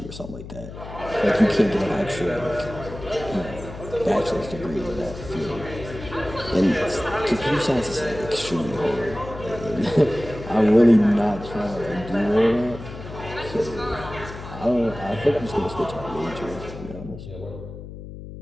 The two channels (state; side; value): noise; left; hum, 12 dB below the sound